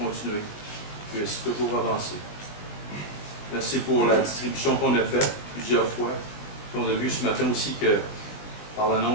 puisse toujours avancer. Merci pour la distribution qu'on a faite plusieurs fois. Puis on a vu ce matin aussi que, par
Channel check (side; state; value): right; late; 20 ms